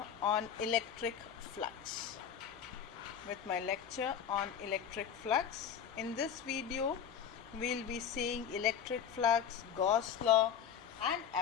on electric flux. In this video, we'll be seeing electric flux, Gauss law, and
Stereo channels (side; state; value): right; quieter; 8.3 dB